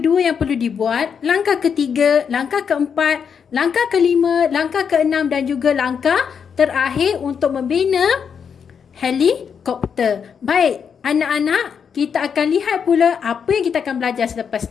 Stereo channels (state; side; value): quieter; right; 6.9 dB